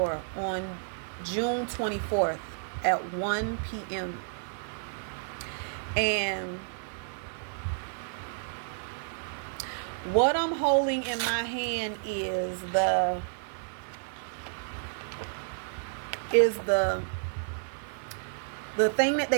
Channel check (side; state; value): left; silent; digital silence